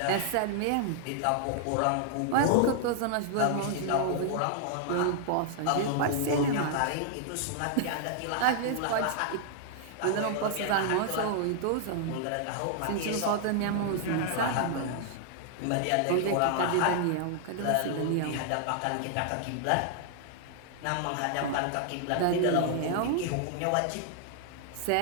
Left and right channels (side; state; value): both; different; correlation -0.01